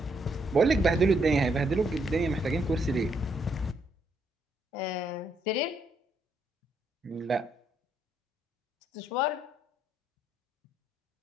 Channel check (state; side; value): normal; both; correlation 0.74